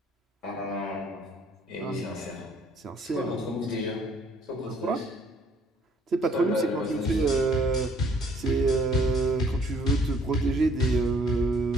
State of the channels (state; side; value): normal; both; correlation 0.61